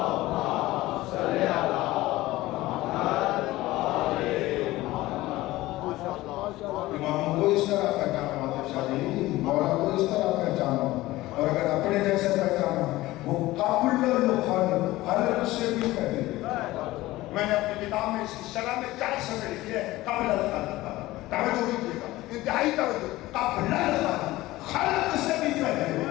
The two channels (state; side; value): quieter; right; 17.8 dB